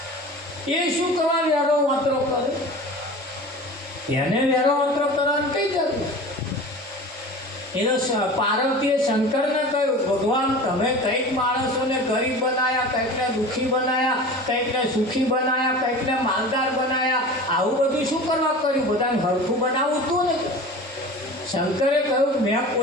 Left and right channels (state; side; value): normal; both; correlation 0.36